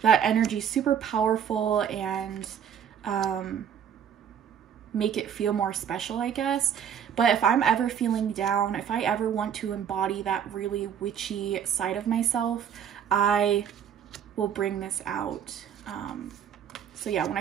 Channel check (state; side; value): quieter; left; 8.5 dB